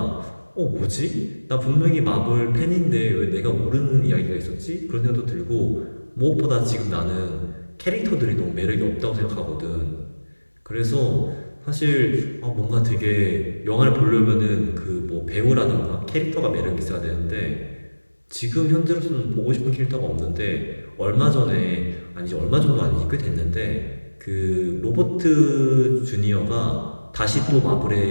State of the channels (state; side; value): inverted; both; correlation -1.00